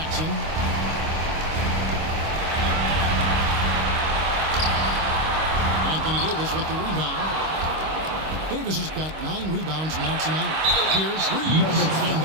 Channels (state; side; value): late; left; 25 ms